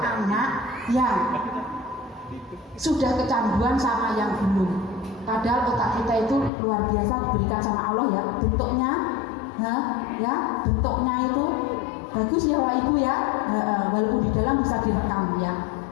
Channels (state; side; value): drops out; right; at 6.5 s